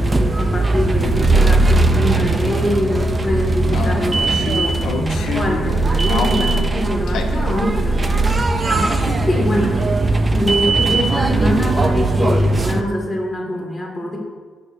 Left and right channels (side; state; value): both; normal; correlation 0.85